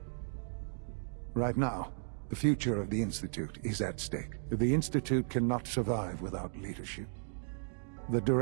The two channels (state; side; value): silent; left; digital silence